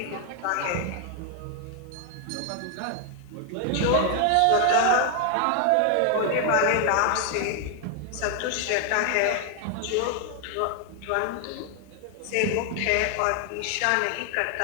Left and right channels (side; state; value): both; different; correlation 0.00